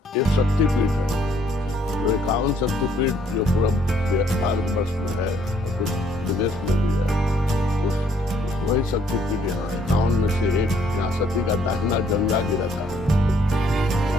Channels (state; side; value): normal; both; correlation 0.66